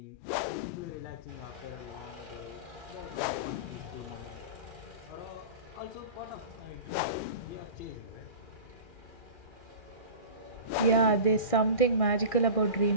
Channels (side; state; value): right; late; 2.4 ms